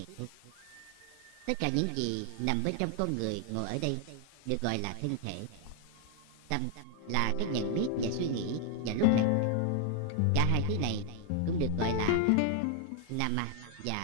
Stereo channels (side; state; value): both; different; correlation 0.00